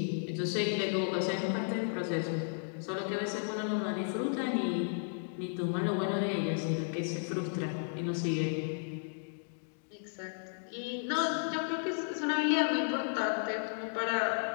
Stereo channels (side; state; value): right; silent; digital silence